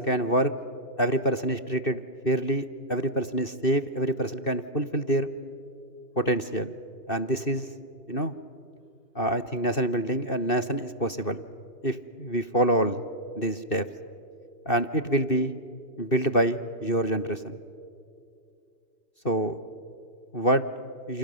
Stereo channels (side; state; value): right; late; 2.6 ms